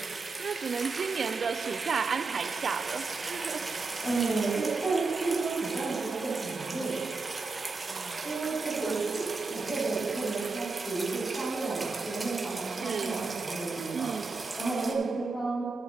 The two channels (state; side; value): quieter; left; 4.0 dB